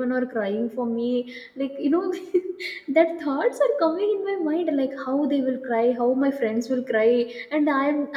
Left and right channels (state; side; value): identical; both; correlation 1.00